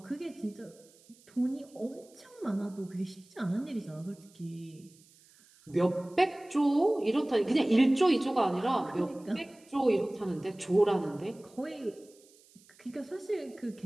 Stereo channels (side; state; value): right; noise; hiss, 28 dB below the sound